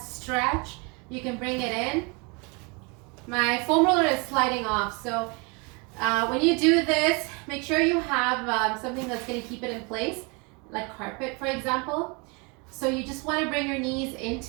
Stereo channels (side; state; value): left; quieter; 30.7 dB